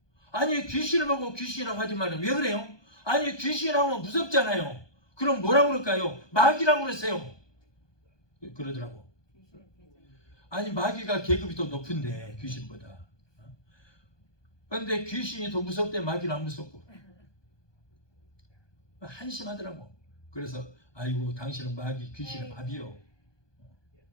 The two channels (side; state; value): right; late; 1.2 ms